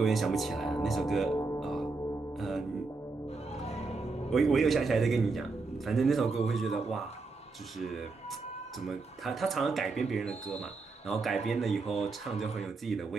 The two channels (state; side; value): quieter; left; 3.9 dB